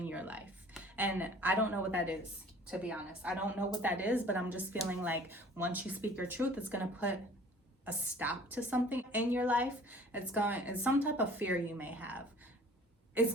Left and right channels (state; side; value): normal; both; correlation 0.49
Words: your life. And I don't know what that is, to be honest. I don't know what that is, but I'm just feeling like once you speak your truth, it's going to put a stop to something in your life. It's some type of fear you may have.